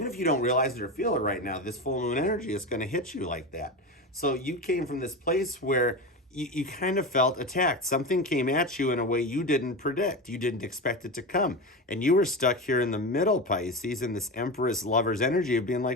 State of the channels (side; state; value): both; normal; correlation 0.22